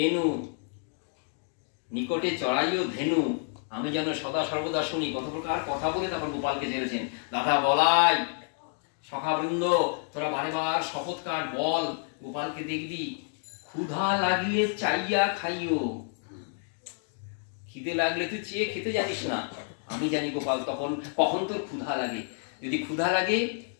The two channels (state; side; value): silent; right; 58 dB below the other